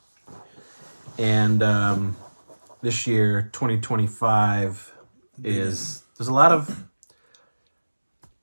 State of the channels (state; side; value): inverted; both; correlation -1.00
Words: And this year, 2025, there's a lot of